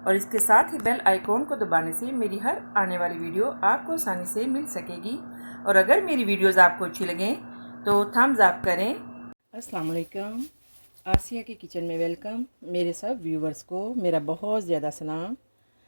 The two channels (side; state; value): both; inverted; correlation -1.00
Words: और इसके साथ ही बेल आइकॉन को दबाने से मेरी हर आने वाली वीडियो आपको आसानी से मिल सकेगी। और अगर मेरी वीडियोस आपको अच्छी लगें तो थम्स अप करें। अस्सलाम वालेकुम, आसिया के किचन में वेलकम। मेरे सब व्यूवर्स को मेरा बहुत ज़्यादा सलाम